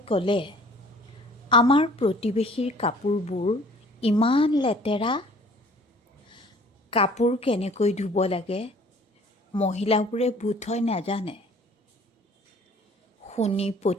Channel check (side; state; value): both; normal; correlation 0.52